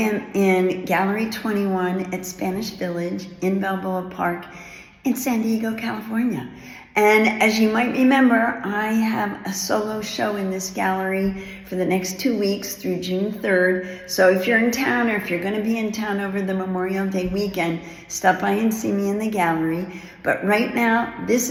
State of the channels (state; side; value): identical; both; correlation 1.00